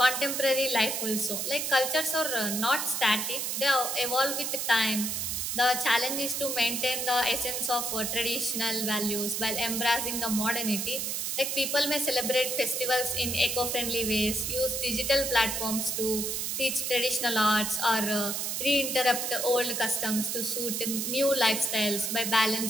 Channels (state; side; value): noise; right; hiss, 1 dB below the sound